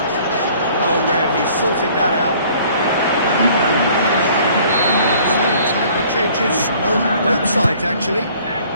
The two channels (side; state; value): both; inverted; correlation -0.55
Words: Oh, Red, he sorted that out. So, time for changes on both sides, actually.